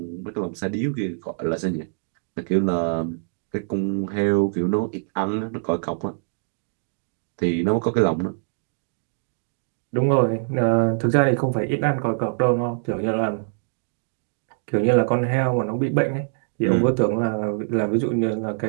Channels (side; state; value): left; silent; digital silence